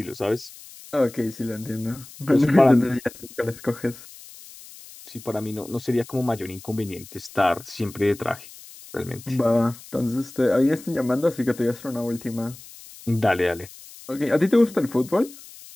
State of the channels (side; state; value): left; noise; hiss, 18 dB below the sound